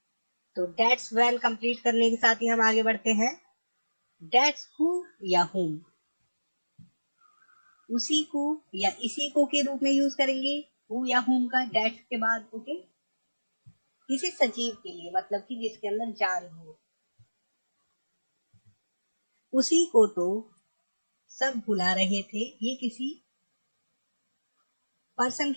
तो that's when कंप्लीट करने के साथ ही हम आगे बढ़ते हैं. That's who या whom. उसी को या इसी को के रूप में यूज करेंगे who या whom का that के बाद. ओके, किसी सजीव के लिए, मतलब कि जिसके अंदर जान हो. उसी को तो सब बुला रहे थे. ये किसी पर्सन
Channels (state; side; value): inverted; both; correlation -1.00